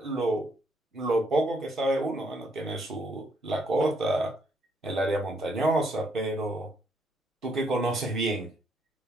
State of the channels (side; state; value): both; normal; correlation 0.72